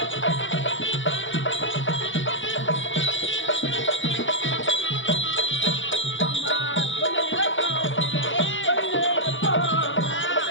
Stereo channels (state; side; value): late; right; 0.56 ms